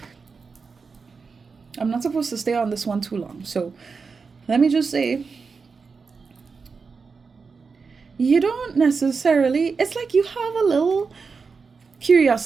I'm not supposed to stay on this one too long. So let me just say, you don't necessarily, it's like you have a little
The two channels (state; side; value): quieter; left; 5.0 dB